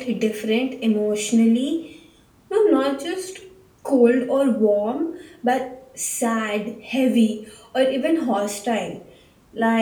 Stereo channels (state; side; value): identical; both; correlation 1.00